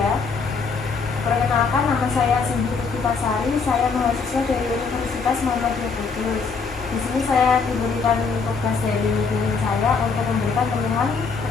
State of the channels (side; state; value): right; quieter; 4.9 dB